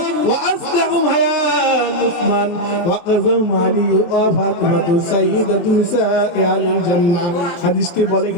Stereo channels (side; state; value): right; late; 23 ms